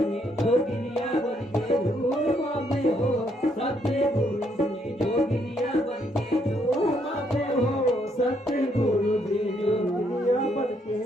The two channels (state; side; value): normal; both; correlation 0.72